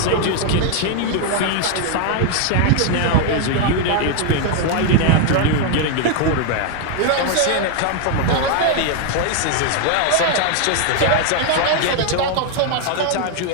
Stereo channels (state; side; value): different; both; correlation 0.00